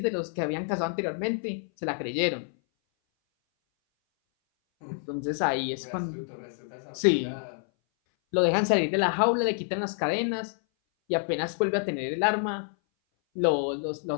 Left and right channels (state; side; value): silent; right; 58 dB below the other